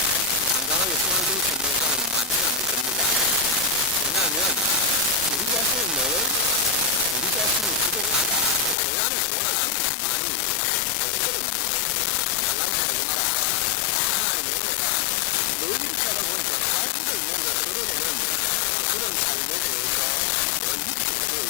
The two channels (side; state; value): right; drops out; at 8.8 s